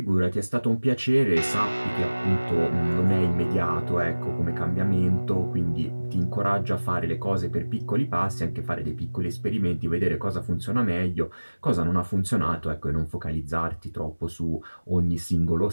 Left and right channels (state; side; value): inverted; both; correlation -1.00